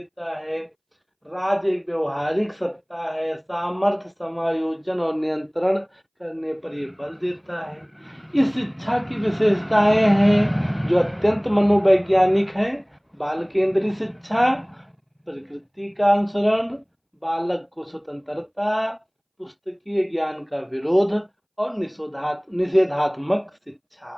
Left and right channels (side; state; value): both; identical; correlation 1.00